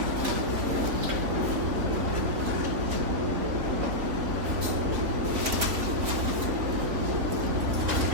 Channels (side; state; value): left; late; 3.5 ms